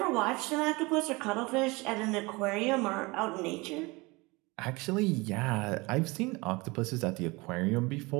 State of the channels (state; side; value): quieter; left; 24.5 dB